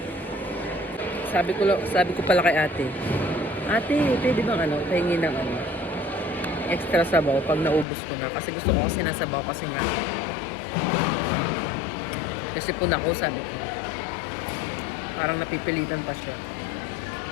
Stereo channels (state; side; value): drops out; right; at 7.9 s